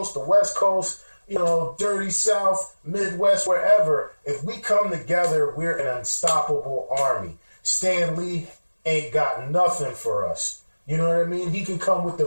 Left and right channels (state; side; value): inverted; both; correlation -1.00